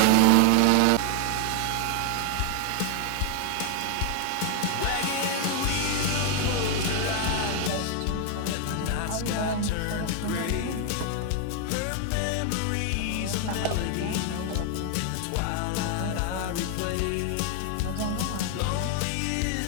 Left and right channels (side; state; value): both; different; correlation 0.00